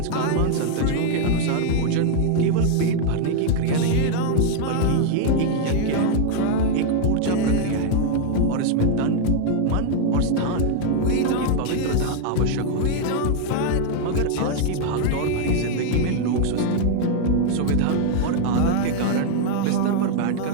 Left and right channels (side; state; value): both; different; correlation 0.00